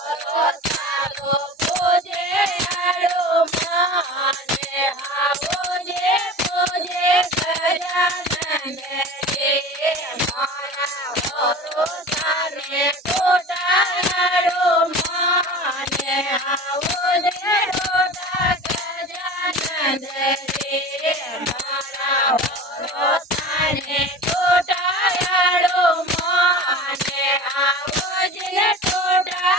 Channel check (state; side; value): normal; both; correlation 0.36